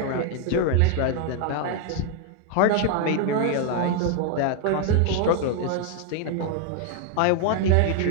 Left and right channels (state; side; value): different; both; correlation 0.00